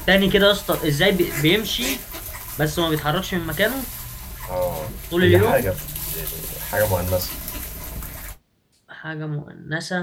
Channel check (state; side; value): identical; both; correlation 1.00